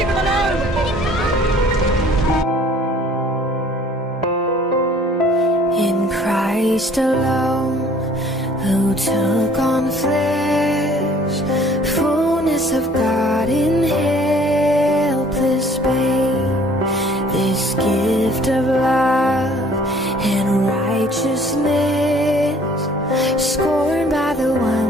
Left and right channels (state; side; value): normal; both; correlation 0.55